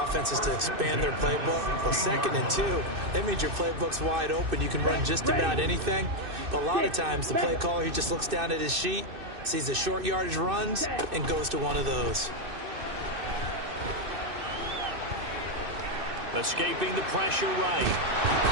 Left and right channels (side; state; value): left; late; 2.6 ms